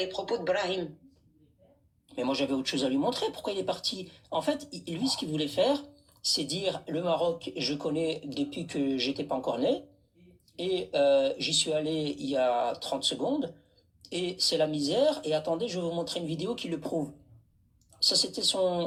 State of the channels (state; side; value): identical; both; correlation 1.00